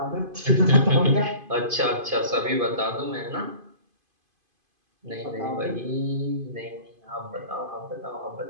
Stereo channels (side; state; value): left; late; 2.5 ms